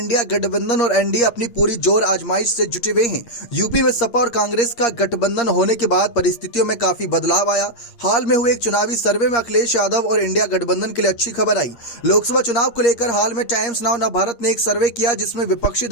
गठबंधन और एनडीए अपनी पूरी जोर आजमाइश से जुटे हुए हैं। यूपी में सपा और कांग्रेस का गठबंधन होने के बाद परिस्थितियों में काफी बदलाव आया। हाल में हुए एक चुनावी सर्वे में अखिलेश यादव और इंडिया गठबंधन के लिए अच्छी खबर आई। लोकसभा चुनाव को लेकर हाल में टाइम्स नाउ नवभारत ने एक सर्वे किया जिसमें विपक्षी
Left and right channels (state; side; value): late; right; 8.5 ms